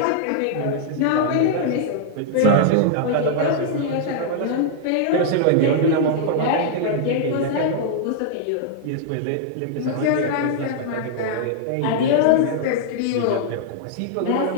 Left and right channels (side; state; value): both; different; correlation -0.01